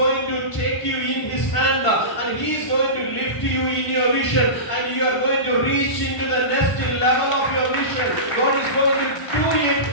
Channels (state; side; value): late; right; 1.5 ms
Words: to take you in His hand and He is going to lift you in your vision and you are going to reach into the next level of your vision. God is going to do it